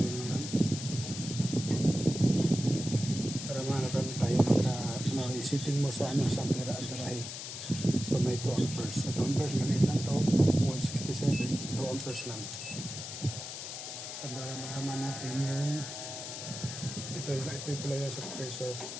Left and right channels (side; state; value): left; noise; hiss, 8 dB below the sound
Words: naman. Para malaman tayo sitting mo sa ano, sa pera at barahe. So may 2 amperes. Sa 2 amperes, maliit lang to. 167. So 2 amperes lang. Para malaman natin yung ito yung pala sa compressor.